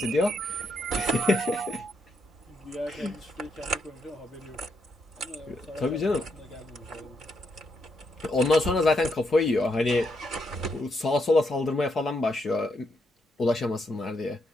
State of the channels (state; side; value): normal; both; correlation 0.79